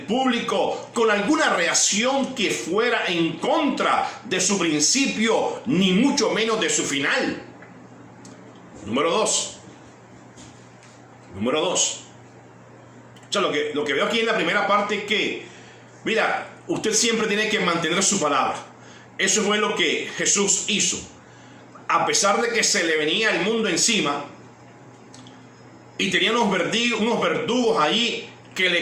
público con alguna reacción que fuera en contra de su principio, ni mucho menos de su final. Número dos. O sea, lo que veo aquí en la primera parte es que, mira, usted siempre tiene que mantener su palabra. Eso fue lo que Jesús hizo. A pesar de que se le venía el mundo encima y tenía unos verdugos allí que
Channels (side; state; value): both; identical; correlation 1.00